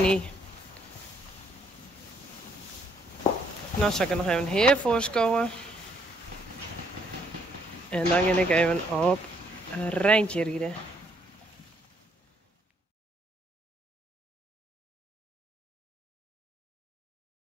Nou zal ik er nog even hier voorschouwen. En dan ga ik even op een Rijntje rijden.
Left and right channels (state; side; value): normal; both; correlation 0.69